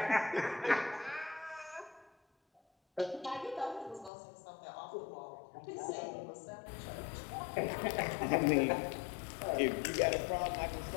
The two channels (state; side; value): drops out; right; at 4.1 s